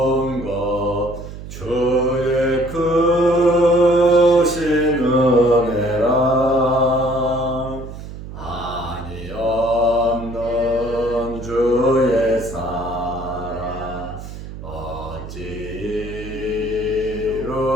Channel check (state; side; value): noise; right; hum, 11 dB below the sound